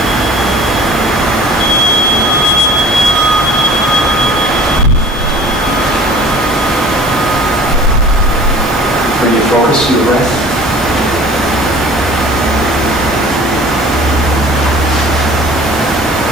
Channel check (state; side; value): normal; both; correlation 0.47